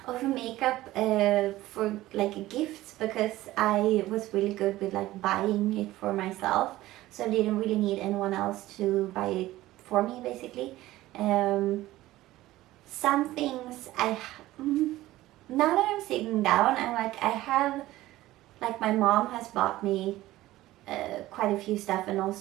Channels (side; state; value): left; quieter; 16.4 dB